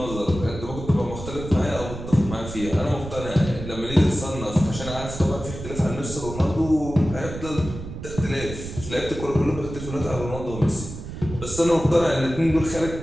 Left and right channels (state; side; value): noise; right; rumble, 10 dB below the sound